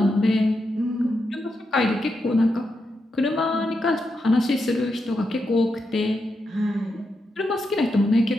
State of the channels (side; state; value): both; normal; correlation 0.85